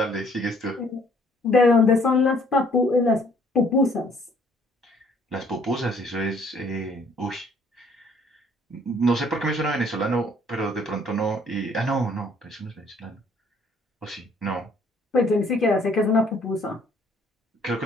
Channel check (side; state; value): both; normal; correlation 0.61